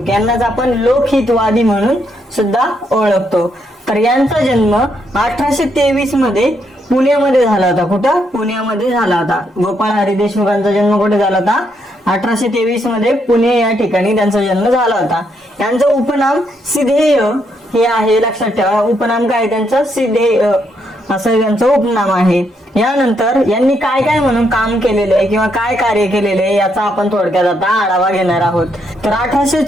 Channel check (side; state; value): both; normal; correlation 0.76